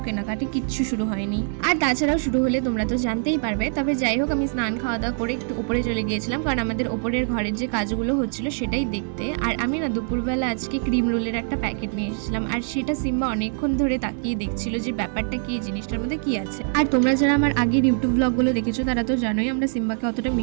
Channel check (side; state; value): left; silent; 61 dB below the other